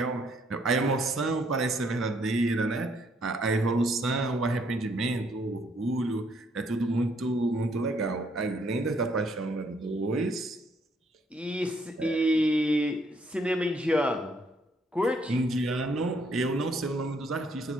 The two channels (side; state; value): both; normal; correlation 0.68